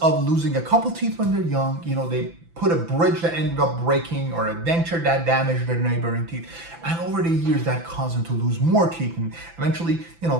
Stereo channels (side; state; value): left; late; 6.0 ms